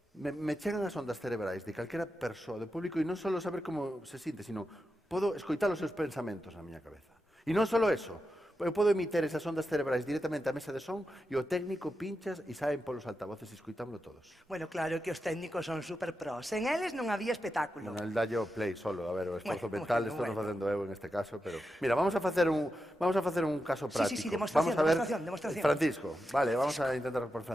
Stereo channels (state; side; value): normal; both; correlation 0.89